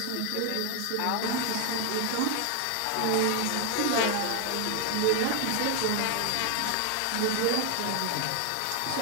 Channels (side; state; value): both; different; correlation 0.00